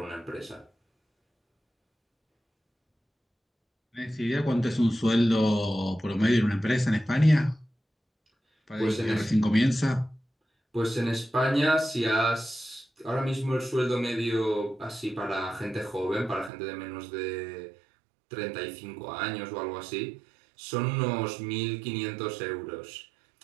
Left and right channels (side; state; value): left; drops out; at 16.5 s